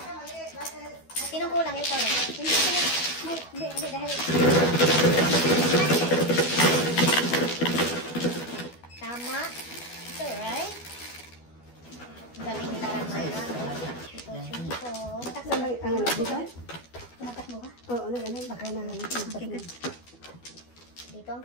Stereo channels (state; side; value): late; right; 12 ms